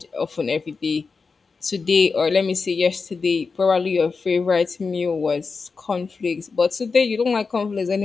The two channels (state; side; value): quieter; right; 4.7 dB